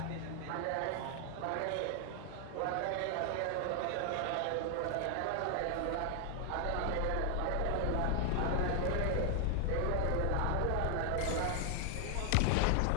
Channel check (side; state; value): both; different; correlation 0.00